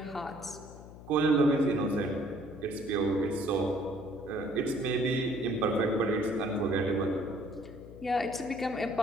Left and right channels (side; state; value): left; noise; hum, 16 dB below the sound